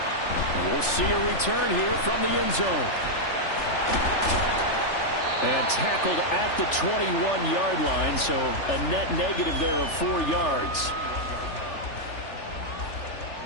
And we'll see a return here from the end zone. And tackled at the 21-yard line, so a net negative there of 4 yards.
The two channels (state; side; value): late; right; 3.4 ms